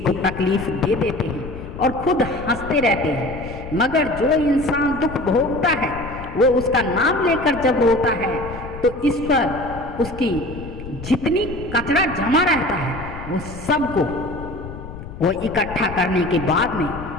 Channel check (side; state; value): left; noise; rumble, 12 dB below the sound